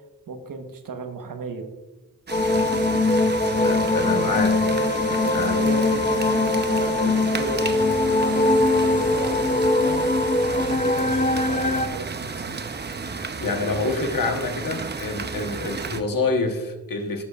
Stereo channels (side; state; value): both; normal; correlation 0.43